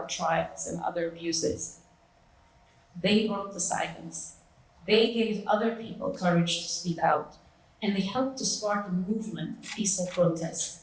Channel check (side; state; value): both; identical; correlation 1.00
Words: trials and other abuses. They broke the silence. They gave other people courage to speak out, and they helped to spark a movement of peaceful protest.